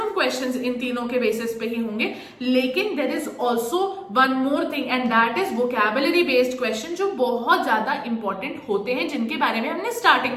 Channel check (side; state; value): both; identical; correlation 1.00